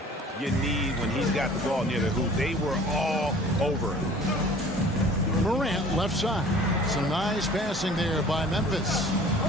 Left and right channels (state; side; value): normal; both; correlation 0.48